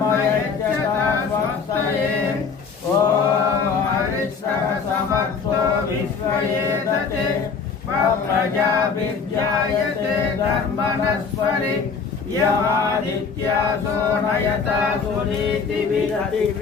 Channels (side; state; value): right; quieter; 5.5 dB